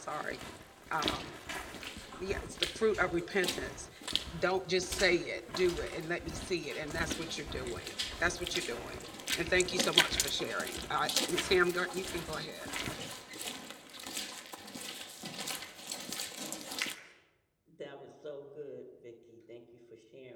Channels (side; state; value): both; identical; correlation 1.00